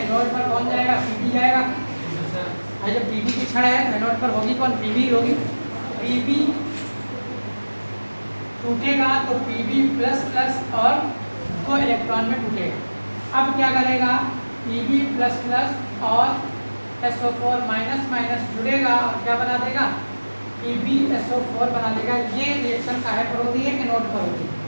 एनोड पर कौन जाएगा, Pb जाएगा। जब Pb की छड़ है तो एनोड पर होगी कौन, Pb होगी। Pb टूटेगा तो Pb++ और 2 इलेक्ट्रॉन में टूटेगा। अब क्या करेगा, Pb++ और SO4- जुड़ेगा और क्या बना देगा, PbSO4 बना देगा। ये रिएक्शन काहे पर होती है, एनोड पर होती है,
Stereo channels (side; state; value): both; inverted; correlation -1.00